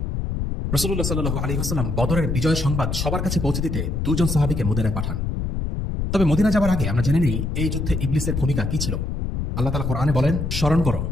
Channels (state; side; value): noise; left; rumble, 2 dB below the sound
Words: রাসূলুল্লাহ সাল্লাল্লাহু আলাইহি ওয়াসাল্লাম বদরের বিজয় সংবাদ সবার কাছে পৌঁছে দিতে 2 জন সাহাবীকে মদিনায় পাঠান। তবে মদিনা যাবার আগে আমরা জেনে নিই এই যুদ্ধে ইবলিসের ভূমিকা কি ছিল। আল্লাহ তাআলা কোরআনে বলেন, স্মরণ করো